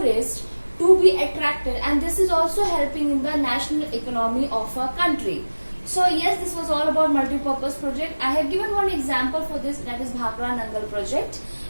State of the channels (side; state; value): both; inverted; correlation -1.00